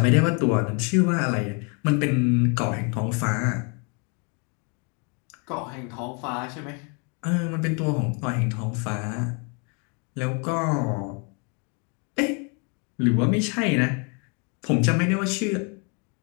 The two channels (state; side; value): quieter; right; 35.4 dB